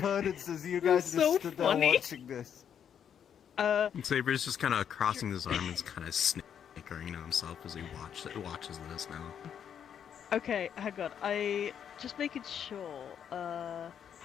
as you guys It's just so stood there funny. watching this. Saber's just kind of crossing his arms and kind of snickering to himself as he watches this now. Okay, hang on. I just making sure.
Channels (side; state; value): right; quieter; 8.5 dB